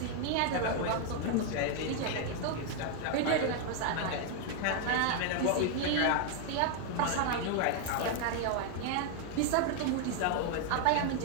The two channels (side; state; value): both; different; correlation 0.00